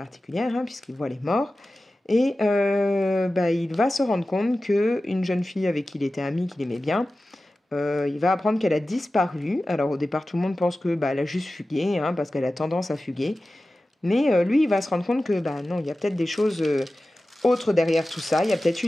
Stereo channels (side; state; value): both; normal; correlation 0.95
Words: hein, puisqu'il voit les morts. Et il va se rendre compte qu'une jeune fille avec qui il était ami, qu'il aimait bien, il va apprendre qu'elle a disparu. Alors au départ, tout le monde pense que elle a juste fugué, hein, parce qu'elle a tendance à fuguer. Mais lui, il va se rendre compte que non, il y a peut-être des choses autres derrière tout ça. Il y a peut-être eu